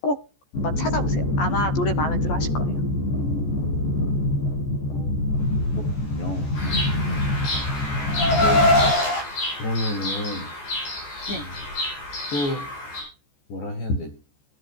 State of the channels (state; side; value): late; right; 14 ms